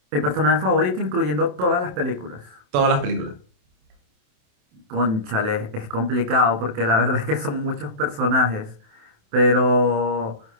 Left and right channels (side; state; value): left; late; 28 ms